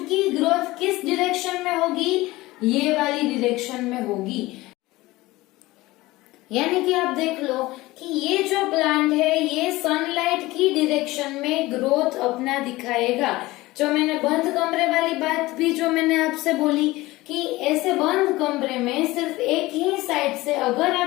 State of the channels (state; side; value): quieter; right; 19.2 dB